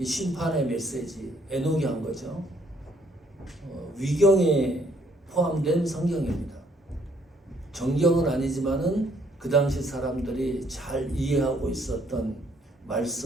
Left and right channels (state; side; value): normal; both; correlation 0.66